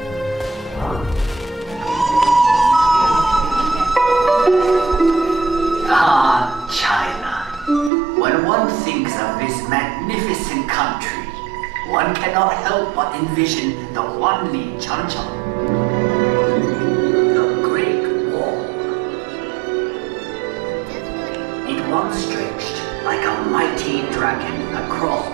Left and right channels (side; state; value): left; drops out; at 7.9 s